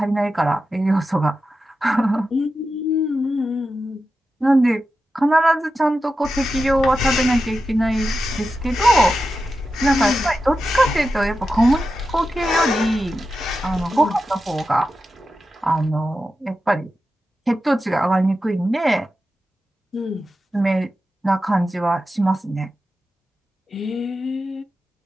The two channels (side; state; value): both; normal; correlation 0.91